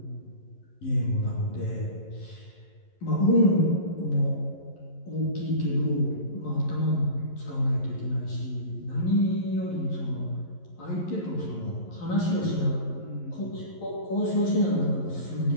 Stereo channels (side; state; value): right; late; 11 ms